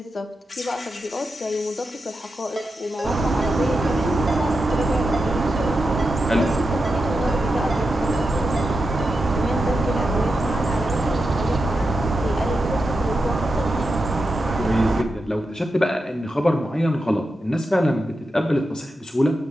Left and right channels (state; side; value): normal; both; correlation 0.88